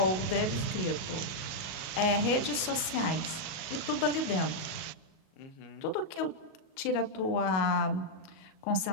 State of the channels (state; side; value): late; right; 37 ms